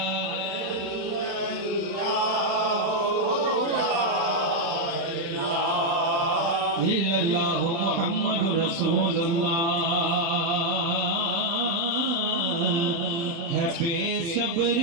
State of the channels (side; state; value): left; late; 35 ms